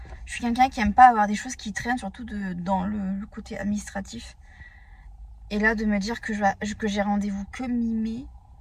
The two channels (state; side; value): identical; both; correlation 1.00